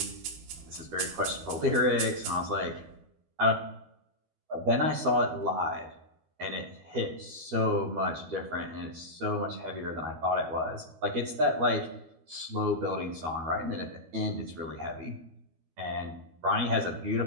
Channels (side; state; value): left; late; 12 ms